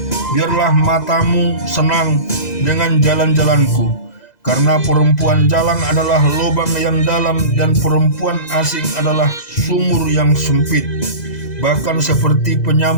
biarlah matamu senang dengan jalan-jalanku. Karena perempuan jalang adalah lubang yang dalam, dan perempuan asing adalah sumur yang sempit. Bahkan seperti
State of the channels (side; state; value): right; late; 2.0 ms